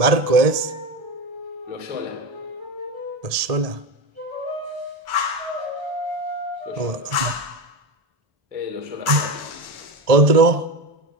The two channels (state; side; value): late; left; 1.7 ms